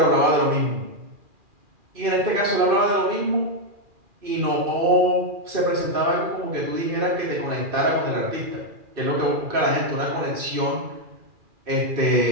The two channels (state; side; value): late; left; 2.4 ms